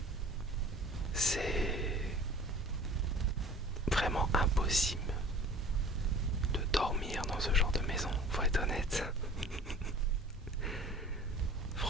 C'est vraiment impossible de dormir dans ce genre de maison, faut être honnête.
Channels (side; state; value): both; normal; correlation 0.45